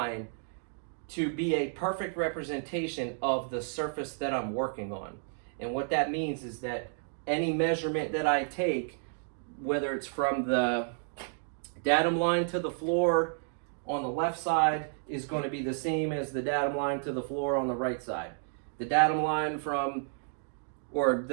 to be a perfect representation of the surface that I'm working on. And what that means is that any measurement that I take, whether it's from the datum line to the floor on the left side, is going to be the same as the datum line to the floor on the right side. The datum line or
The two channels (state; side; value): silent; left; digital silence